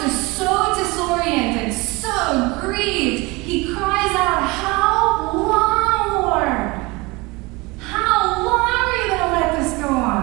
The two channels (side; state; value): left; quieter; 24.3 dB